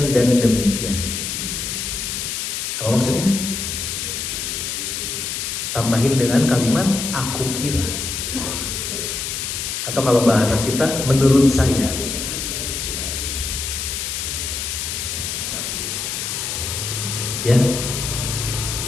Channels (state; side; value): noise; left; hiss, 3 dB below the sound